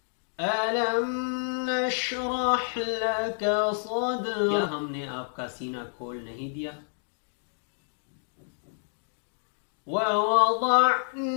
أَلَمْ نَشْرَحْ لَكَ صَدْرَكَ، کیا ہم نے آپ کا سینہ کھول نہیں دیا؟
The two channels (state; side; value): silent; right; digital silence